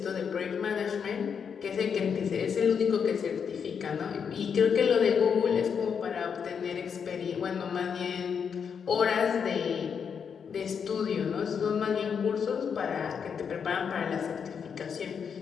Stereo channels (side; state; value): right; quieter; 6.8 dB